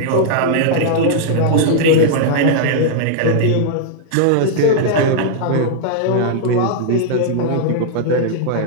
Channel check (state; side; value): different; both; correlation -0.01